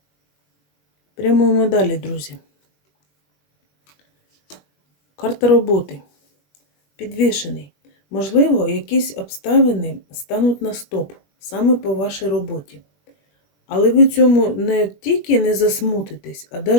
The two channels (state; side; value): late; right; 21 ms